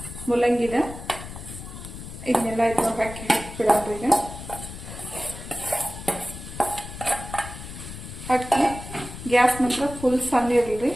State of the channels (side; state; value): left; noise; rumble, 12 dB below the sound